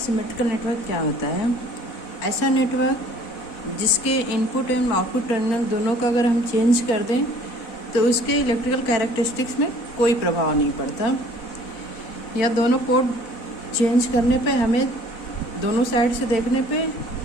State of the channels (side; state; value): right; late; 4.1 ms